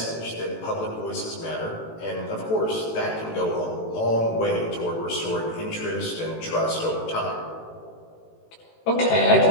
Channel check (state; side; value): late; right; 18 ms